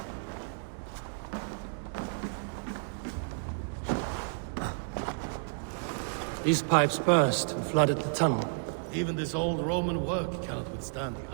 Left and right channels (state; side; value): silent; left; digital silence